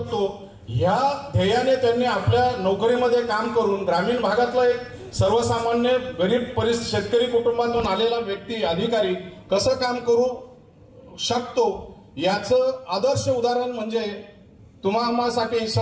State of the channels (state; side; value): identical; both; correlation 1.00